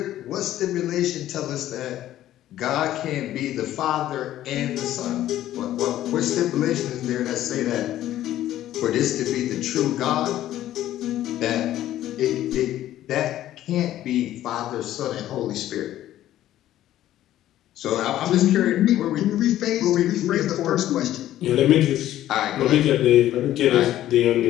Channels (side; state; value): right; quieter; 13.2 dB